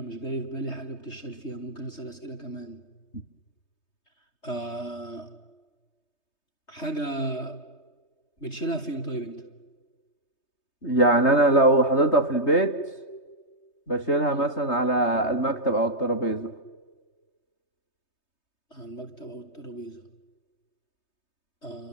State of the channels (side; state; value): right; late; 3.2 ms